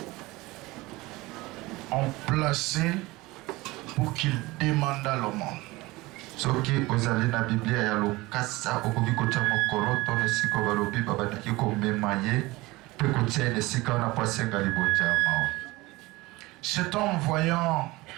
on plaçait pour qu'il demandât l'aumône. Cet homme, voyant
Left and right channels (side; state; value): left; quieter; 21.0 dB